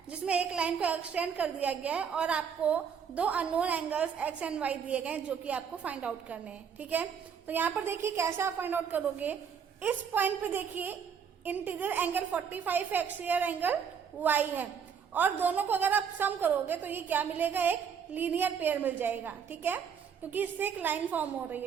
जिसमें एक लाइन को एक्सटेंड कर दिया गया है और आपको दो unknown angles x and y दिए गए हैं जो कि आपको फाइंड आउट करने हैं. ठीक है, तो यहाँ पर देखिए कैसे आप फाइंड आउट करोगे. इस पॉइंट पे देखिए इंटीरियर एंगल 45 है, एक्सटीरियर एंगल y है और दोनों को अगर आप सम करोगे तो ये क्या मिलेगा, एक लीनियर पेयर मिल जाएगा. ठीक है, क्योंकि इससे एक लाइन फॉर्म हो रही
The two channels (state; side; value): quieter; left; 7.2 dB